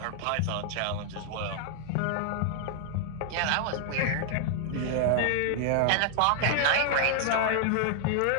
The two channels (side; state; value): both; different; correlation 0.00